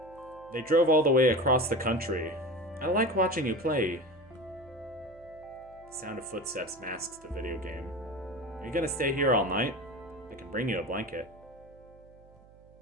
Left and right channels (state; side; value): noise; right; hum, 25 dB below the sound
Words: They drove all the way across the country. I like watching you play. The sound of footsteps masks the video game. Are you gonna stay here all night? I can bring you a blanket.